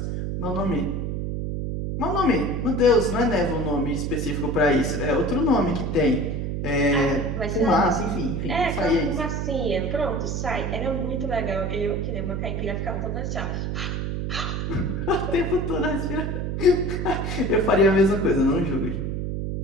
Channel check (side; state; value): right; noise; hum, 2 dB below the sound